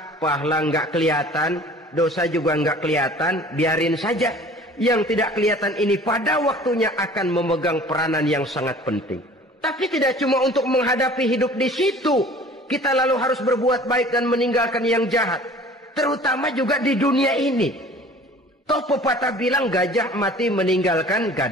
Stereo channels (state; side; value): normal; both; correlation 0.47